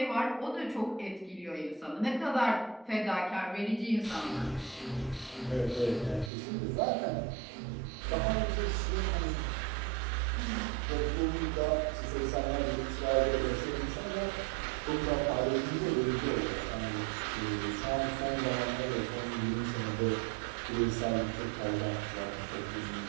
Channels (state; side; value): drops out; left; at 6.3 s